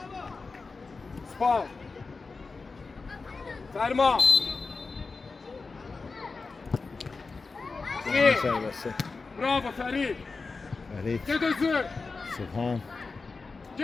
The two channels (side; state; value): right; quieter; 4.2 dB